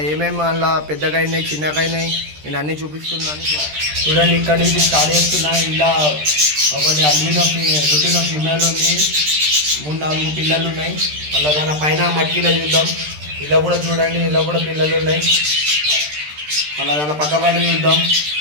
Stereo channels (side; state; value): left; late; 13 ms